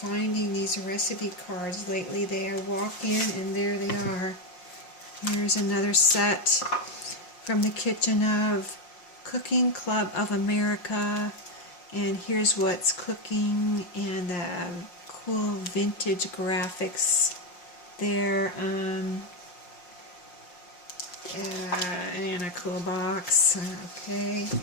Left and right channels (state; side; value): late; right; 5.6 ms